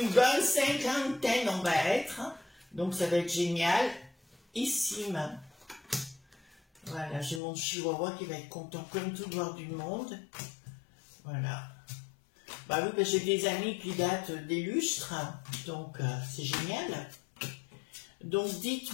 bonne cinquantaine on va être, hein. Donc ça va être génial. Ici, voilà, j'ai mon chihuahua qui va être content comme tout de voir du monde. Voilà. Bah oui, parce que j'ai des amis qui datent des lustres, donc c'est génial. Donc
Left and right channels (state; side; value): drops out; right; at 7.4 s